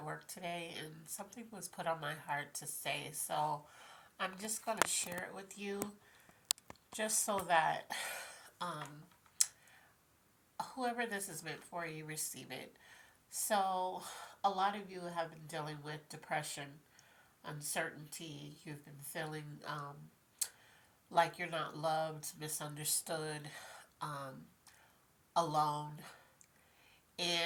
work today and something was put on my heart to say, so I'm just going to share it with you just so that um, whoever this is meant for, you receive it. So, a lot of you have been dealing with depression, uncertainty, you've been feeling like you're not loved, misunderstood, um, alone.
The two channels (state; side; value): identical; both; correlation 1.00